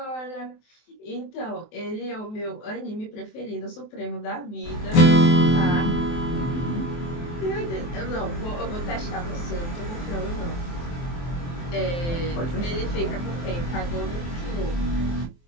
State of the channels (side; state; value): right; late; 23 ms